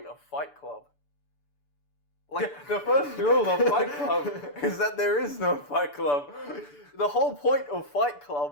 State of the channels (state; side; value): late; right; 6.9 ms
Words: of Fight Club. Like, The first rule of Fight Club is that there is no Fight Club. the whole point of Fight